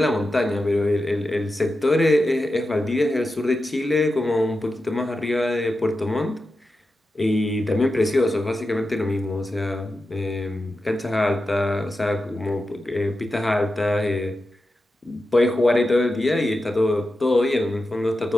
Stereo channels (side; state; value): both; normal; correlation 0.91